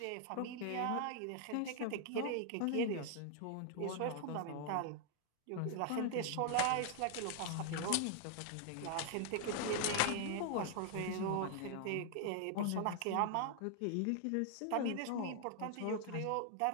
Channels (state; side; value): different; both; correlation 0.00